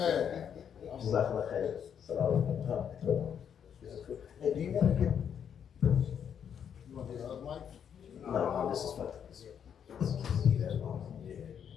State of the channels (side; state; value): right; quieter; 8.2 dB